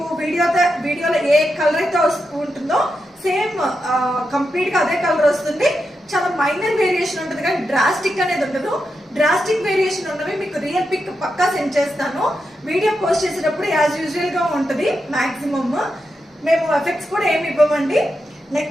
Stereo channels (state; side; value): normal; both; correlation 0.86